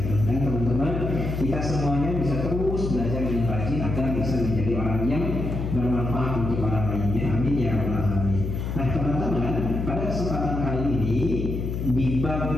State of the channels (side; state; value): left; noise; hum, 3 dB below the sound